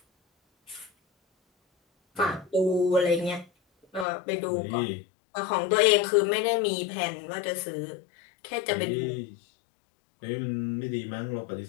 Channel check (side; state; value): right; drops out; at 4.0 s